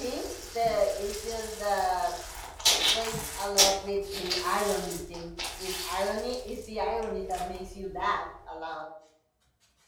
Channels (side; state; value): both; identical; correlation 1.00